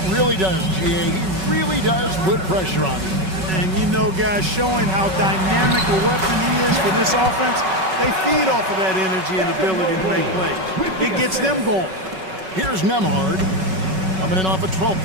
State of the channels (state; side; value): late; left; 5.3 ms